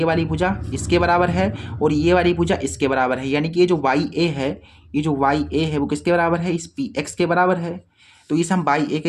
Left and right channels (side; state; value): both; identical; correlation 1.00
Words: वाली भुजा इसके बराबर है और ये वाली भुजा इसके बराबर है, यानी कि ये जो वाई ए है, ये जो वाई ए है वो किसके बराबर है, इस पी एक्स के बराबर है। तो इस हम बाई ए